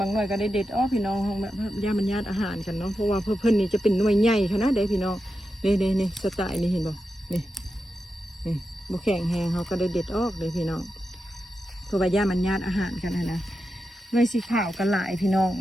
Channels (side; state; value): both; normal; correlation 0.89